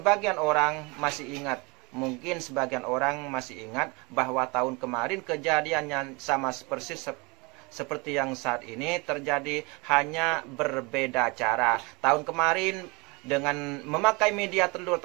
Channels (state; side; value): quieter; left; 27.4 dB